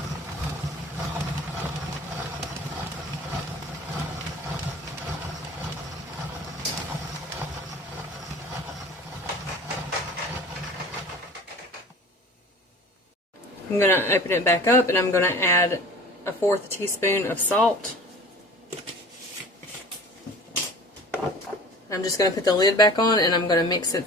I'm going to open it back up and I'm going to add a 1/4 teaspoon of salt. I'm just going to put the lid back on and I'm going to mix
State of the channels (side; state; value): both; normal; correlation 0.42